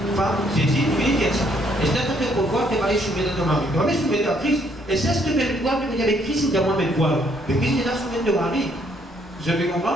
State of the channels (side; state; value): both; normal; correlation 0.68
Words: Femme, Jésus, lui, dit ça. Et c'est un peu pourquoi tu vas aller soumettre à ton mari. Tu vas aller soumettre à Christ. Et c'est ce que tu veux voir, tu veux dire avec Christ, il dit à moi, mais quoi? Mais Christ, il a soumettre ton mari. Je vais